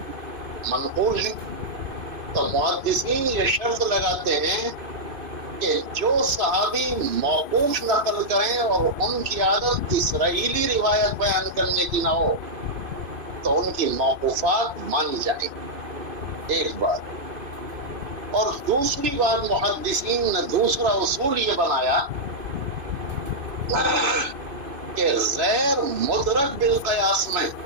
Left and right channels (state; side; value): late; left; 2.5 ms